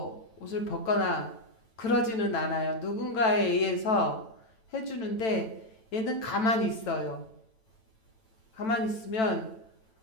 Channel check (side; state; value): right; late; 9.0 ms